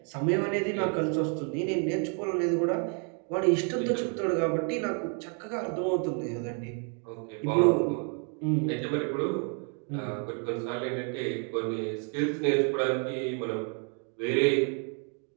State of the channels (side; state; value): left; quieter; 39.9 dB